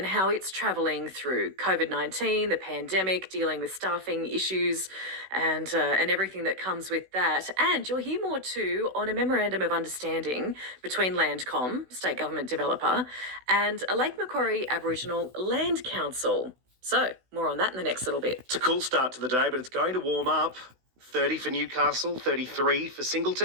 how it's travelling through COVID-19, the pandemic, dealing with staffing issues and everything that comes with that. And you'll hear more too on a memorandum of understanding between Landcom, state government developer, and a Lake Macquarie Aboriginal Land Council. So more on that in the next little bit. It's a cool start to the day, but it's going to warm up. 30 for Newcastle, 33 for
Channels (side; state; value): left; late; 16 ms